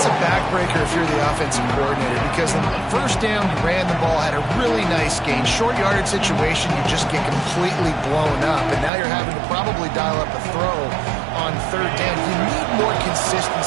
a backbreaker if you're the offensive coordinator, because on the first down, you ran the ball, had a really nice gain. Short yardage situation, you just get completely blown up, and now you're having to probably dial up a throw on third down. You need more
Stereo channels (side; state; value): left; drops out; at 8.9 s